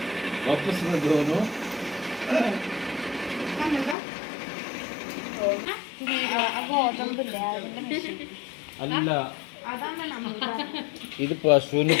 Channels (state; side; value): drops out; right; at 4.0 s